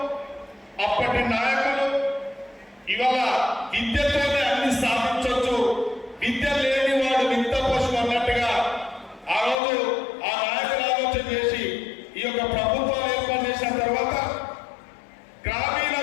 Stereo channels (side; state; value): right; drops out; at 9.6 s